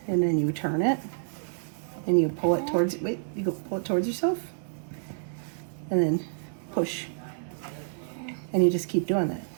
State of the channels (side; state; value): left; silent; 59 dB below the other